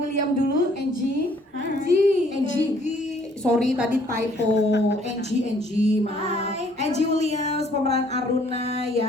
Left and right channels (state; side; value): normal; both; correlation 0.61